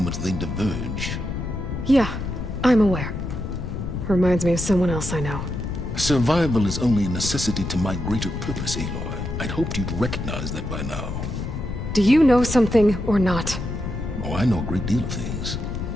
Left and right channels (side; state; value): left; noise; rumble, 5 dB below the sound